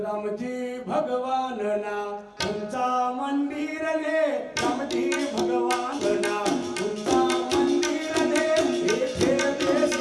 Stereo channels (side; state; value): both; identical; correlation 1.00